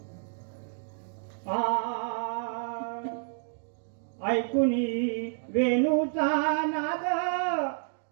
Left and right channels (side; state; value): left; silent; digital silence